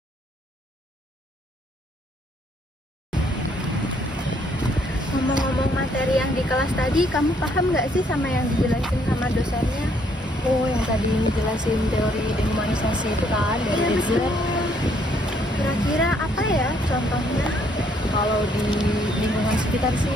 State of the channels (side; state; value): both; normal; correlation 0.68